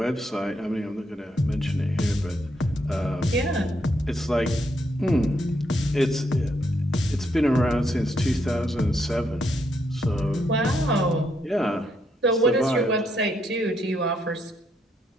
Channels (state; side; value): normal; both; correlation 0.76